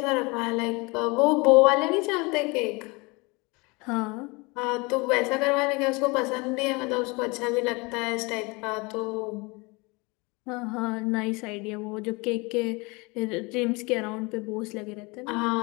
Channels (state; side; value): quieter; right; 26.8 dB